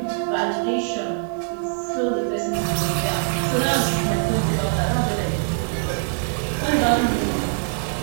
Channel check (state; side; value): silent; left; digital silence